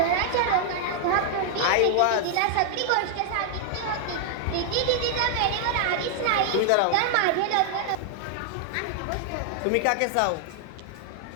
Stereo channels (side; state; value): both; different; correlation 0.00